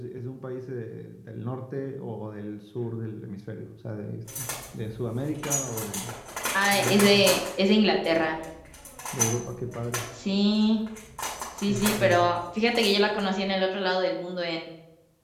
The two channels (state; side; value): identical; both; correlation 1.00